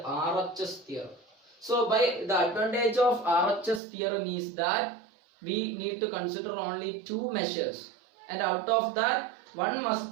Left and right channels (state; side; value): drops out; left; at 3.8 s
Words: theorem. So by the advantage of RHS theorem is that we need to consider only two measures, and out of that one must